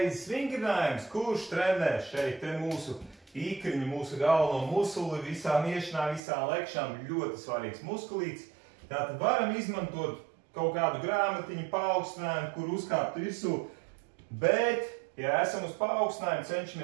vingrinājums, kurš trenē šeit te mūsu īkriņu, mūsu galveno musuli, visām iešanām, visām lekšām, ļoti svarīgs muskulīts. Tātad varam izmantot kaut kādu grāmatiņu paaugstinājumu, kur uzkāpt virsū, bet, ja esam uz paaugstinājumu,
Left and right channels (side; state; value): left; drops out; at 6.2 s